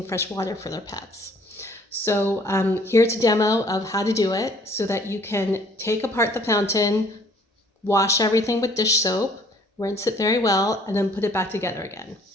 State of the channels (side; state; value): both; normal; correlation 0.58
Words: fresh water for their pets. So here's a demo of how to do it so that you can take apart the fountain, wash everything with dish soap, rinse it very well, and then put it back together again.